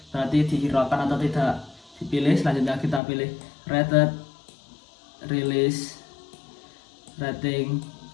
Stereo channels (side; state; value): right; drops out; at 3.0 s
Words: berarti dihiraukan atau tidak dipilih. Selanjutnya kita pilih rated, release, rating,